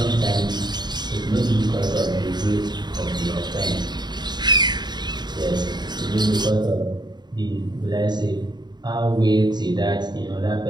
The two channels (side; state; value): left; late; 0.21 ms